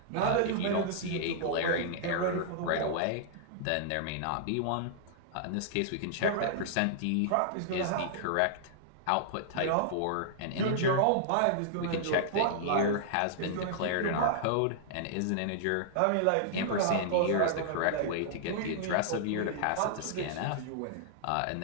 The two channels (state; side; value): different; both; correlation -0.01